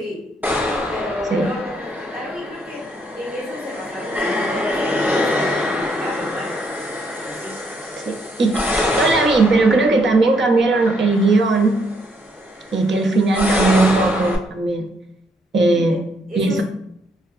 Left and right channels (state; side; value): normal; both; correlation 0.72